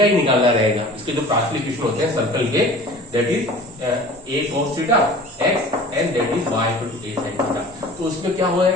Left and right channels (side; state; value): both; normal; correlation 0.43